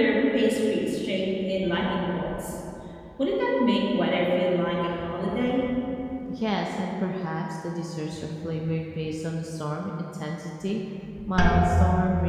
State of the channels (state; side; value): identical; both; correlation 1.00